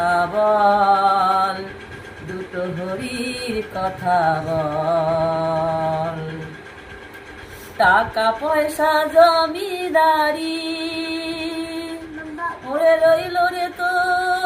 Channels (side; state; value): both; identical; correlation 1.00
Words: বল, দুটো হরির কথা বল। টাকা পয়সা জমিদারি ওরে রইল রে